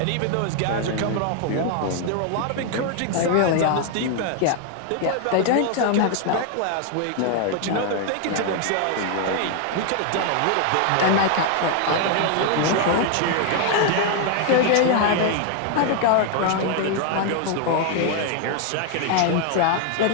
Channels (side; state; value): both; different; correlation 0.00